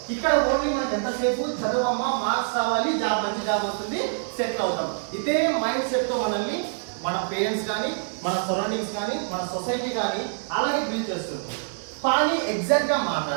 ఇక్కడ ఓన్లీ మనకి ఎంతసేపు చదవమ్మా, మార్క్స్ రావాలి, మంచి జాబ్ వస్తుంది, సెటిల్ అవుతాం. ఇదే మైండ్ సెట్తో మనల్ని మన పేరెంట్స్ కానీ, మన సరౌండింగ్స్ కానీ, మన సొసైటీ కానీ అలాగే బిల్డ్ చేస్తుంది. కానీ ఎగ్జాక్ట్గా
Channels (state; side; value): silent; left; digital silence